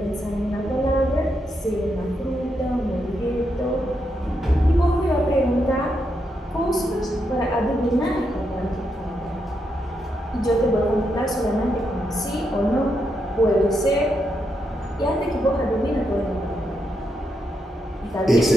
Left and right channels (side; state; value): both; normal; correlation 0.82